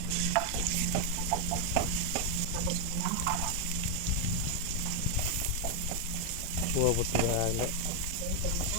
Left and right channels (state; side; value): different; both; correlation 0.01